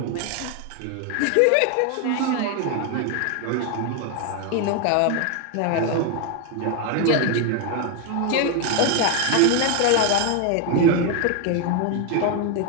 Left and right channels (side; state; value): both; different; correlation 0.01